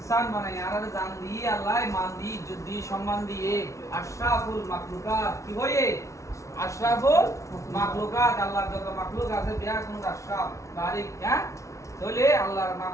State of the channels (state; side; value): late; right; 0.14 ms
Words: বানাই, আরা জান দিয়ে আল্লাহ মান দিয়ে, ইজ্জত দিয়ে, সম্মান দিয়ে আশরাফুল মাখলুকাত কি হয়ে? আশরাফুল মাখলুকাত। আল্লাহর যত মাখলুক আছে বিয়া কোন আশরাফ বারিক, হ্যাঁ? তাহলে আল্লাহর